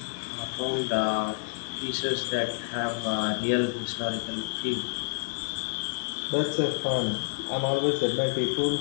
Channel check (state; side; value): silent; right; digital silence